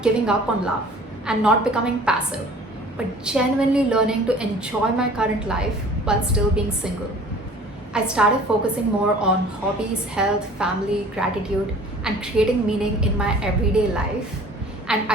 giving up on love and not becoming passive, but genuinely learning to enjoy my current life while still being single. I started focusing more on hobbies, health, family, gratitude, and creating meaning in my everyday life. And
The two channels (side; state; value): both; normal; correlation 0.48